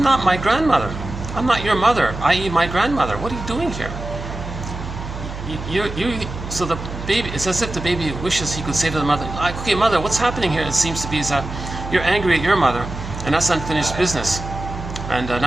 not my grandmother. I'm not your mother, i.e. my grandmother. What are you doing here? So the baby, it's as if the baby wishes he could say to the mother, okay, mother, what's happening here, it seems to be, is that you're angry at your mother, and that's unfinished business. And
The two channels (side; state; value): right; noise; hum, 9 dB below the sound